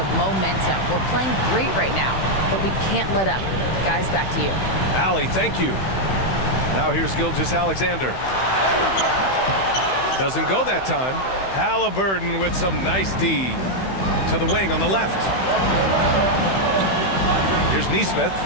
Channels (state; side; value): late; right; 16 ms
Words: momentum. We're playing great right now, but we can't let up. Guys, back to you. Allie, thank you. Now here's Gilgeous-Alexander. Doesn't go that time. Halliburton with some nice D. To the wing on the left. Here's Nesmith.